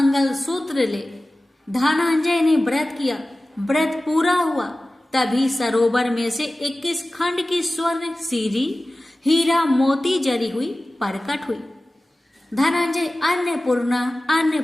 सूत्र ले। धनंजय ने व्रत किया, व्रत पूरा हुआ। तभी सरोवर में से 21 खंड की स्वर्ण सीरी हीरा मोती जरी हुई प्रकट हुई। धनंजय अन्नपूर्णा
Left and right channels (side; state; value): both; normal; correlation 0.96